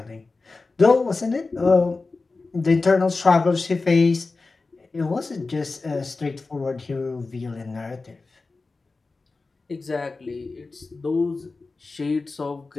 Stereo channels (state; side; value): quieter; right; 3.8 dB